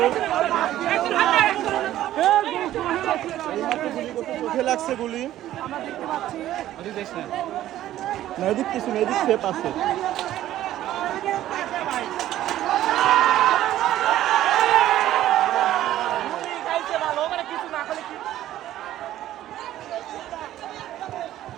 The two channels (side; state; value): left; quieter; 13.3 dB